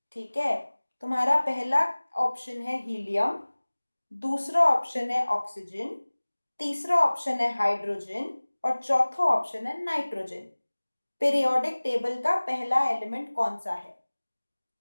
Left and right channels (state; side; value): inverted; both; correlation -1.00